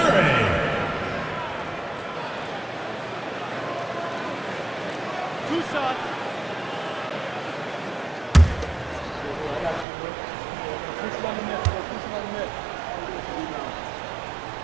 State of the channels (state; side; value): drops out; left; at 9.9 s